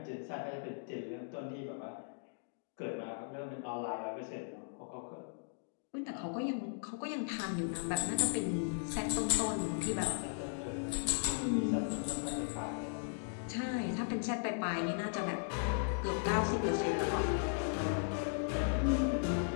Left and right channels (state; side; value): silent; right; digital silence